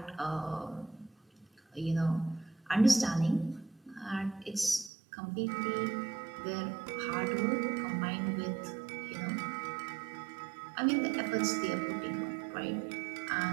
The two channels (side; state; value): left; drops out; at 4.9 s